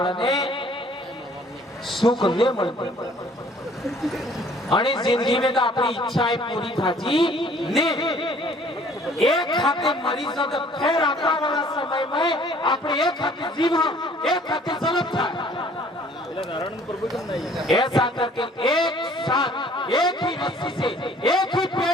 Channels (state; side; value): normal; both; correlation 0.56